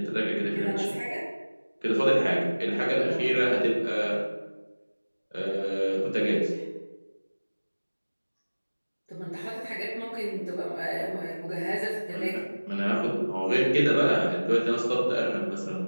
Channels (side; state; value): both; inverted; correlation -1.00